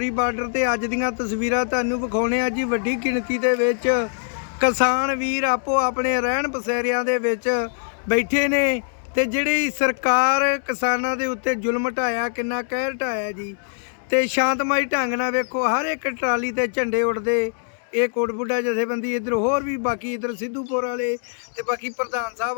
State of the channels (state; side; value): silent; right; digital silence